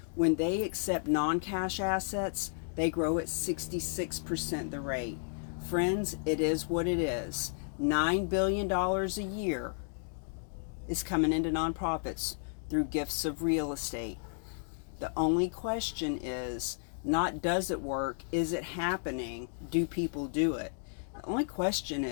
When they accept non-cash assets, they grow at 66% the rate. Friends, it is what it is. $9 billion a year is coming into nonprofits through gifts of real estate. The only question is not does it work, is it happening, do people do it? The only question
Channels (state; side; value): silent; right; digital silence